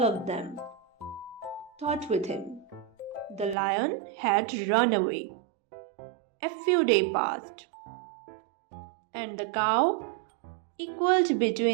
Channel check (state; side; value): drops out; left; at 3.6 s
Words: of them thought with him. The lion had run away. A few days passed, and the cow equaled